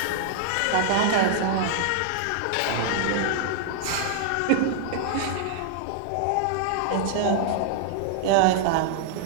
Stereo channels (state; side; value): different; both; correlation -0.01